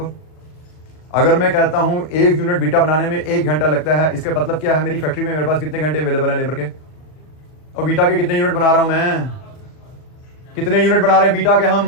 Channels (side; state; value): right; late; 39 ms